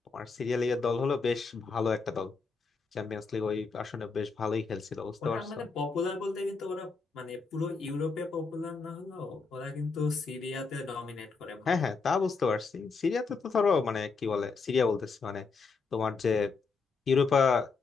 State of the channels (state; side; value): quieter; right; 4.7 dB